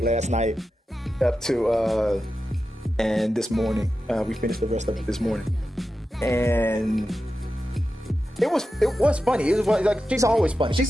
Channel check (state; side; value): normal; both; correlation 0.91